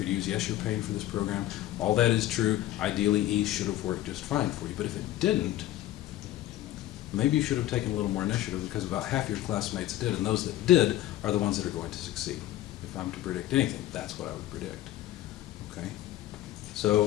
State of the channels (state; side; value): quieter; right; 14.3 dB